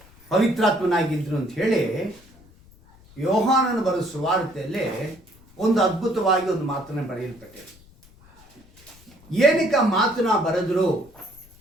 ಪವಿತ್ರಾತ್ಮನಾಗಿದ್ದರು ಅಂತ ಹೇಳಿ ಯೋಹಾನನ ಬರೆದ ಸುವಾರ್ತೆಯಲ್ಲಿ ಒಂದು ಅದ್ಭುತವಾಗಿ ಒಂದು ಮಾತನ್ನು ಬರೆಯಲ್ಪಟ್ಟಿದೆ. ಏನಕ್ಕೆ ಆ ಮಾತನ್ನ ಬರೆದ್ರು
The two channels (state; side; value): noise; left; rumble, 26 dB below the sound